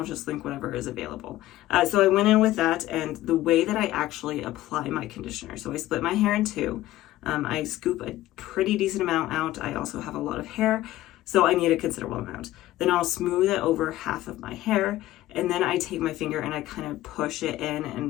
just link whatever is available. So I went in with that, and the way that I actually apply my conditioner. So I split my hair in two. I scoop a pretty decent amount out. I also have a lot of hair, so I need a considerable amount. Then I'll smooth it over half of my hair, and then I take my finger and I kind of push it in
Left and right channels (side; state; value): right; quieter; 15.4 dB